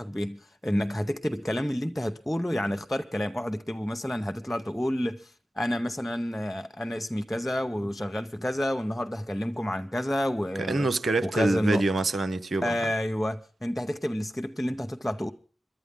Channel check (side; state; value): both; normal; correlation 0.94